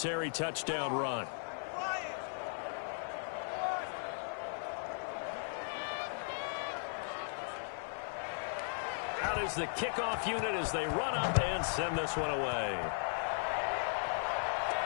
touchdown run. Out is the kickoff unit as they run up and send this one away.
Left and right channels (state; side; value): silent; right; 53 dB below the other